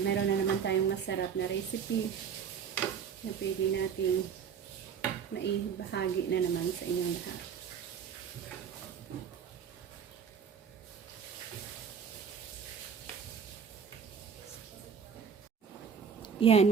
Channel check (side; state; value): left; quieter; 7.0 dB